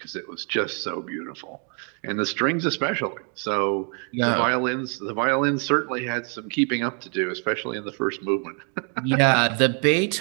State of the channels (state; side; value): quieter; left; 39.5 dB